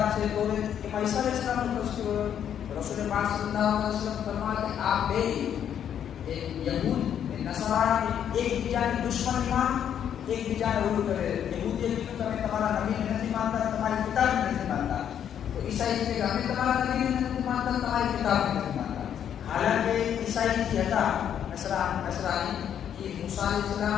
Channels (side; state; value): right; quieter; 9.2 dB